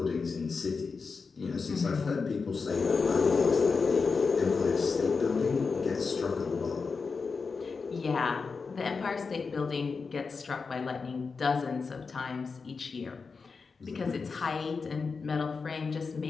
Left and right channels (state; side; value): quieter; right; 4.8 dB